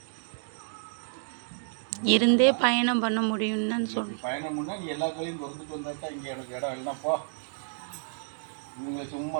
இருந்தே பயணம் பண்ண முடியும்னு சொல்லி பயணம் பண்ணால் நீ எல்லா கலையும் திறந்துட்டு வந்தால் தான் இங்கே எனக்கு இடம் இல்லைன்னா போ, இவங்களை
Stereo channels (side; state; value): left; silent; digital silence